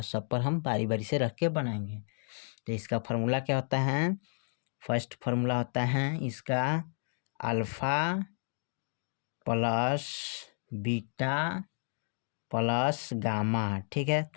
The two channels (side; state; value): right; silent; digital silence